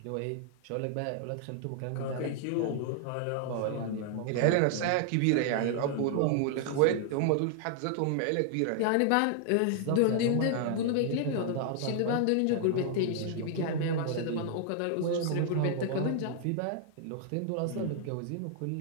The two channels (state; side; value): different; both; correlation 0.00